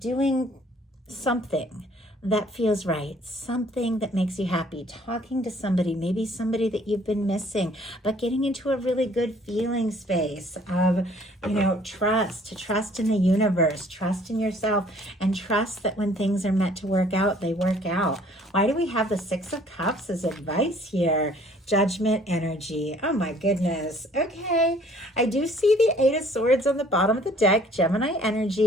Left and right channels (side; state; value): both; normal; correlation 0.57